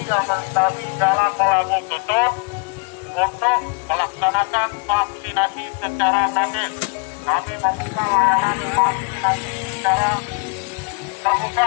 yang melintasi jalan Melabu Tutut untuk melaksanakan vaksinasi secara gratis. Kami membuka layanan vaksinasi secara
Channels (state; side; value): quieter; right; 33.1 dB